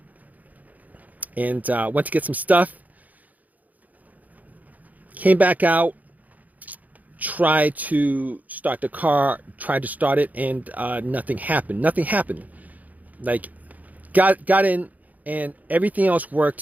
went to get some stuff. Came back out, tried to start the car, tried to start it, and nothing happened. Nothing happened. Like got in, and everything else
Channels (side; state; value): left; late; 0.078 ms